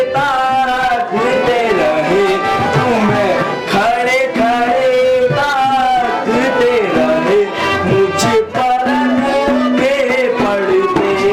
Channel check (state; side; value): identical; both; correlation 1.00